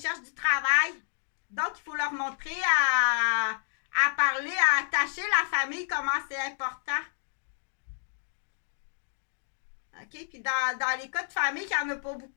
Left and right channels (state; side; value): silent; right; digital silence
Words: cherche du travail. Donc, il faut leur montrer à parler, à attacher la famille, comment c'est important. OK? Puis dans les cas de famille, il n'y en a pas